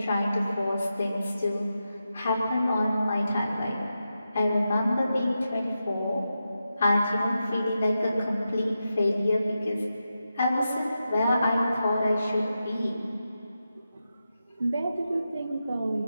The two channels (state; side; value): inverted; both; correlation -0.89